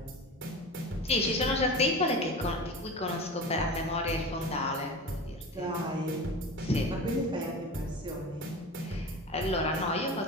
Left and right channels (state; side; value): normal; both; correlation 0.31